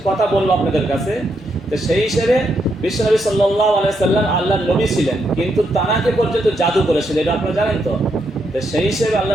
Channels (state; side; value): normal; both; correlation 0.79